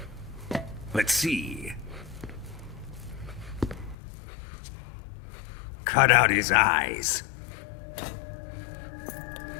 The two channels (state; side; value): drops out; right; at 4.0 s